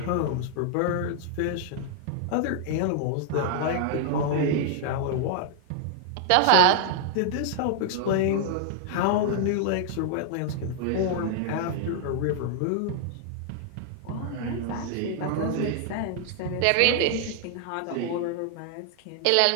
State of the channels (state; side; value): different; both; correlation 0.00